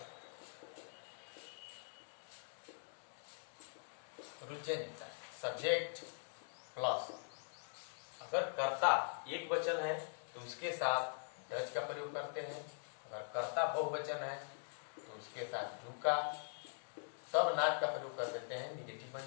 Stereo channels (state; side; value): silent; right; digital silence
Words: रूल चेंज होता है। सब्जेक्ट प्लस, अगर कर्ता एक वचन है तो उसके साथ डज का प्रयोग करते हैं, अगर कर्ता बहुवचन है तो उसके साथ डू का, तब नॉट का प्रयोग कर देते हैं, निगेटिव बन